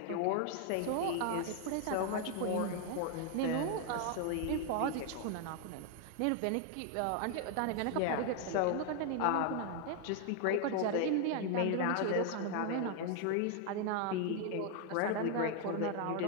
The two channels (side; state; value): both; different; correlation 0.00